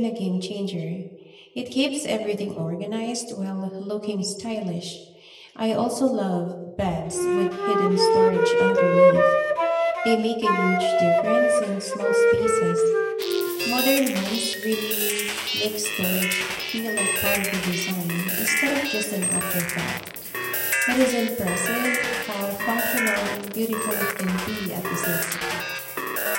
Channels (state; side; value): identical; both; correlation 1.00